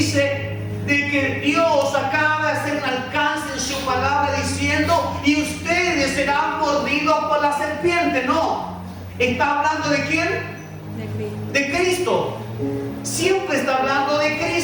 de que Dios acaba de hacer un alcance en su palabra diciendo y ustedes serán mordidos por la serpiente. No, está hablando ¿de quién? De Cristo. Siempre está hablando de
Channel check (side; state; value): both; identical; correlation 1.00